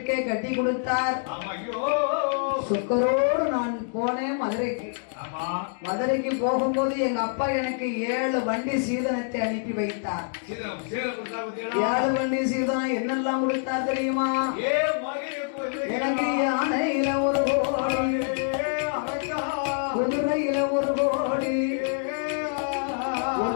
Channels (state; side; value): silent; right; digital silence